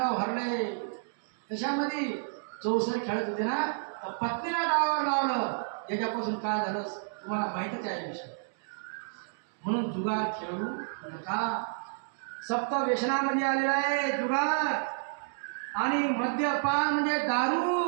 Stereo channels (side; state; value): left; silent; digital silence